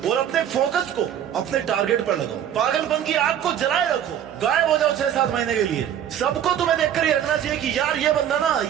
और अपने फोकस को अपने टारगेट पर लगाओ। पागलपन की आग को जलाए रखो, गायब हो जाओ 6-7 महीने के लिए। सबको तुम्हें देखकर ये रखना चाहिए कि यार ये बंदा ना,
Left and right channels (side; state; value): left; quieter; 10.0 dB